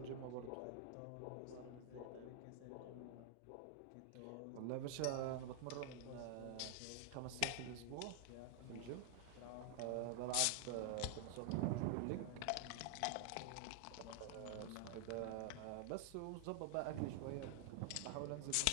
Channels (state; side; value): different; both; correlation 0.00